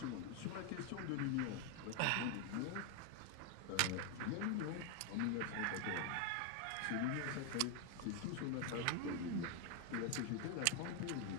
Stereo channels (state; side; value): different; both; correlation 0.01